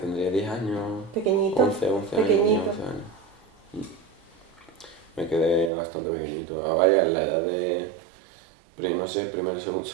10 años. Pequeñito. 11 años. Pequeñito. 11 años. Me quedé bastante pequeñito. Vaya, en la edad de... no sé,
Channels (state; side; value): drops out; left; at 5.7 s